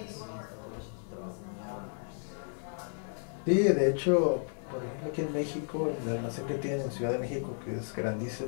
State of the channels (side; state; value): right; silent; digital silence